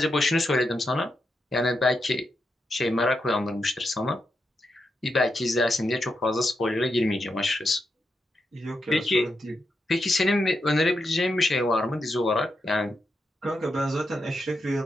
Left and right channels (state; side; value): normal; both; correlation 0.85